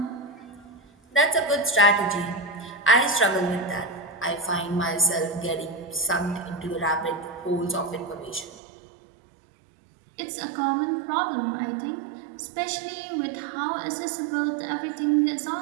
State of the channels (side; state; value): left; drops out; at 8.6 s